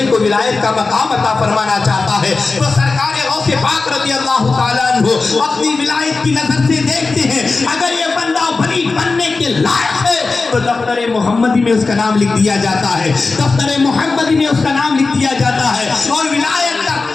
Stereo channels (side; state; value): right; quieter; 3.9 dB